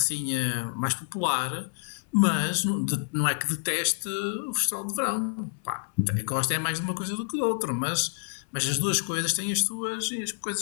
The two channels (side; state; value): right; silent; 58 dB below the other